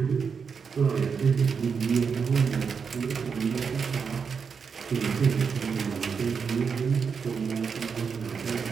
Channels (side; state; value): left; quieter; 6.0 dB